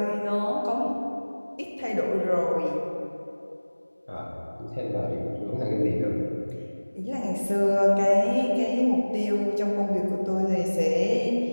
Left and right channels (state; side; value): inverted; both; correlation -1.00